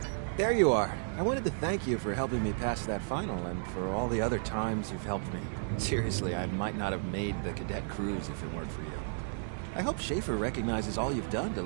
There you are. I wanted to thank you for helping me pass that final and for all the other times you've helped me. Seriously, I might not have made the cadet cruise if it weren't for you. I hope Schaefer recognizes all you've done to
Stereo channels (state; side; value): silent; left; digital silence